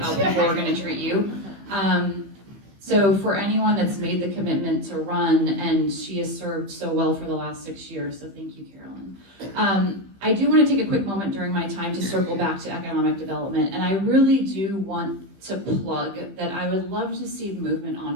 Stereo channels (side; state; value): left; late; 15 ms